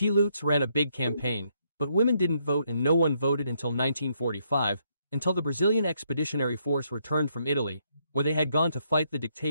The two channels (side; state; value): both; inverted; correlation -0.74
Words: ran a big campaign, but women didn't vote and no one voted until 1945, until the Brazilian Expeditionary Force returned from Italy, where they had gone to fight the